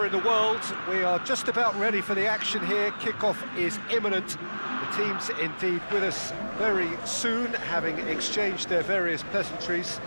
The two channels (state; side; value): inverted; both; correlation -1.00